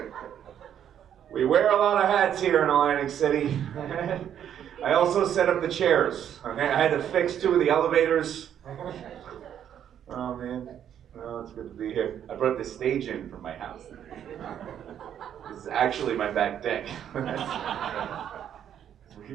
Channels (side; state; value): left; quieter; 9.6 dB